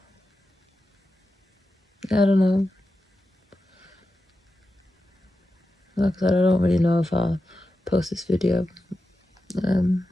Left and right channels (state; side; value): normal; both; correlation 0.91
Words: I don't know. Like I said, I don't really know if I'll post this video.